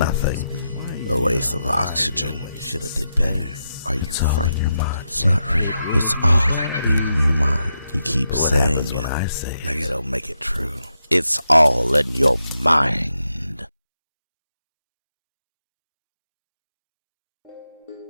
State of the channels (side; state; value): both; inverted; correlation -0.85